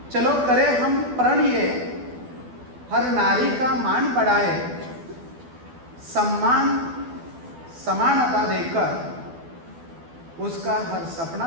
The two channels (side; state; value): left; late; 12 ms